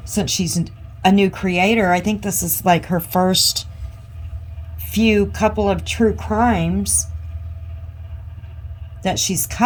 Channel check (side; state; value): both; identical; correlation 1.00